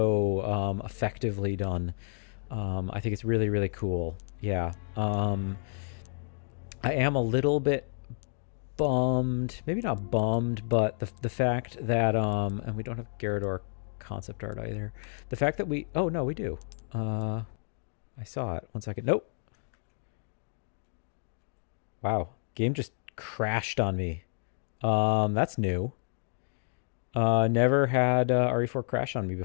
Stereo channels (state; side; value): silent; right; digital silence